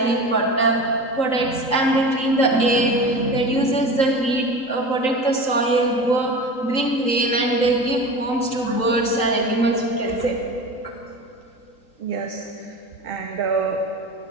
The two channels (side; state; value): right; late; 3.8 ms